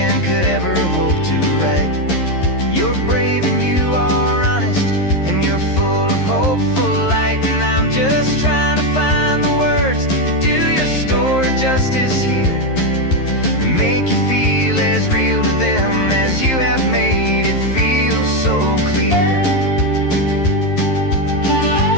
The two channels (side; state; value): right; late; 11 ms